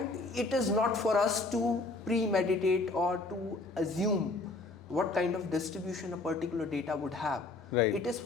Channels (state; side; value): quieter; right; 3.3 dB